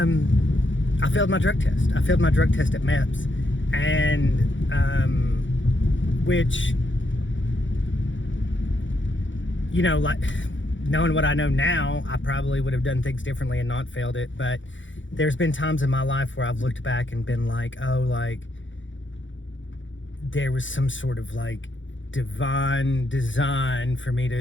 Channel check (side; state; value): right; late; 0.55 ms